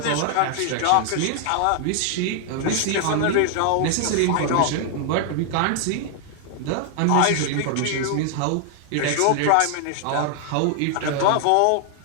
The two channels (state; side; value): different; both; correlation 0.00